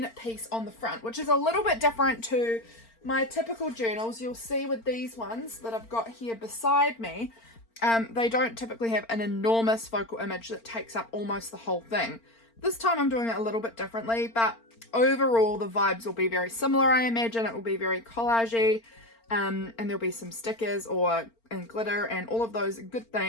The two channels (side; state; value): right; late; 4.4 ms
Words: piece on the front, which is a little bit different to my typical journals. You'll see with these ones that I've got here beside me, they don't typically have an enormous focal image that takes up almost the whole thing. This time I'm doing it a little bit differently, but overall the vibes will be very similar. I imagine it will be very collagey, and there'll be some stickers and glitter and all of those good